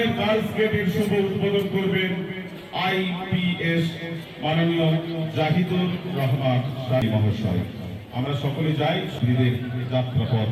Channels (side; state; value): both; identical; correlation 1.00